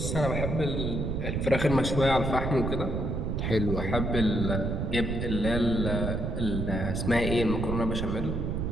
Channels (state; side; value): noise; right; rumble, 1 dB below the sound